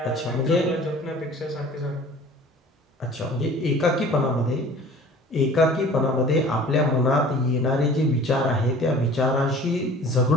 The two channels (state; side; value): normal; both; correlation 0.46